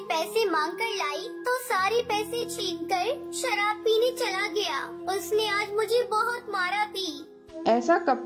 पैसे मांग कर लाई तो सारे पैसे छीनकर शराब पीने चला गया। उसने आज मुझे बहुत मारा भी। ऐसा कब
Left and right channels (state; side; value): identical; both; correlation 1.00